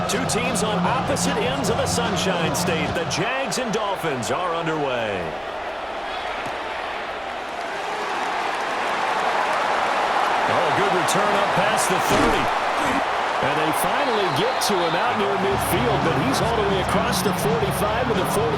Two teams on opposite ends of the Sunshine State. The Jags and Dolphins are underway. Oh, good return up past the 30. And they finally get to him out near midfield, but he's all the way across the 45 to the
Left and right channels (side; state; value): both; identical; correlation 1.00